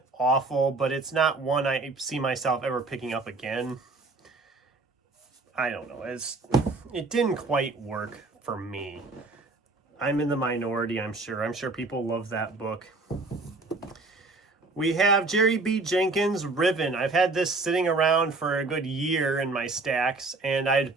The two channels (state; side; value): quieter; left; 3.5 dB